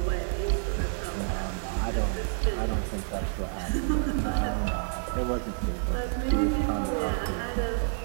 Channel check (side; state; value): left; silent; 59 dB below the other